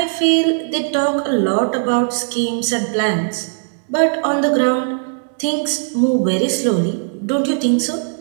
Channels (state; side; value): silent; left; 66 dB below the other